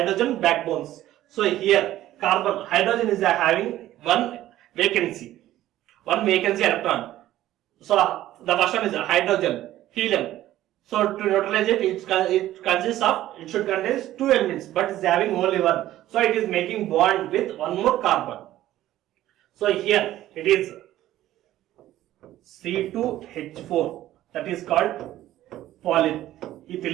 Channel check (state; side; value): quieter; left; 14.0 dB